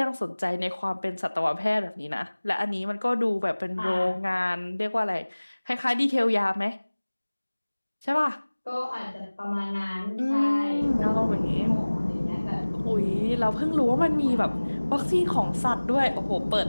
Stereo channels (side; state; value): both; inverted; correlation -1.00